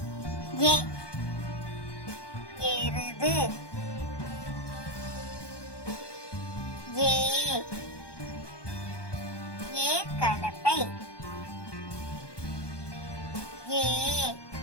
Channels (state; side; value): late; right; 1.2 ms